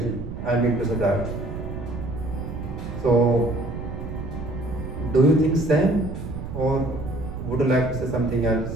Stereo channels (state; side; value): noise; right; rumble, 8 dB below the sound